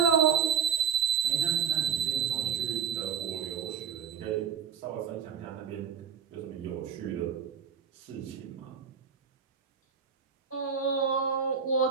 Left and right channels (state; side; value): quieter; left; 6.9 dB